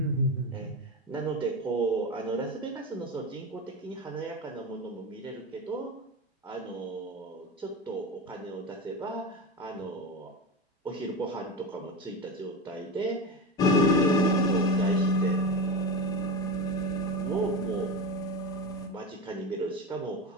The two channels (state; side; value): normal; both; correlation 0.21